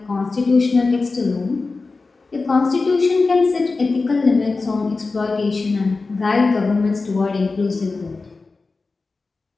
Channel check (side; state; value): right; quieter; 3.9 dB